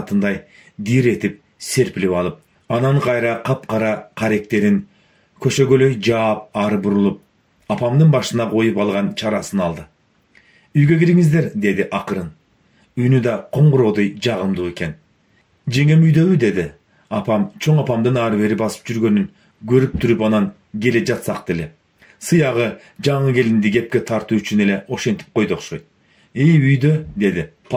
диретип серпилип алып, анан кайра капкара каректерин көшөгөлөй жаап ары бурулуп, апамдын башына коюп алган чарасын алды. "Үйгө кириңиздер", деди акырын. Үнү да коңгуроодой жагымдуу экен. "Жеңем үйдөбү?" деди. Апам чоң апамдын ары бери басып жүргөнүн көрүп туруп анан келе жатсак деле. Сыягы жаңы келинди кепке тартуу үчүн эле ошентип койду окшойт. "Үйдө", деди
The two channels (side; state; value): both; identical; correlation 1.00